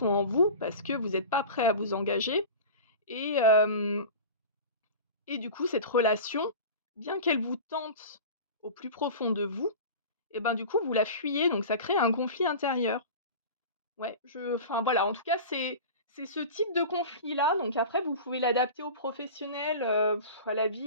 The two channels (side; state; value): both; inverted; correlation -0.33